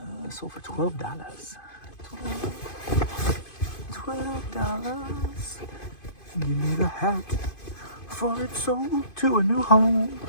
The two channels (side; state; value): right; late; 2.5 ms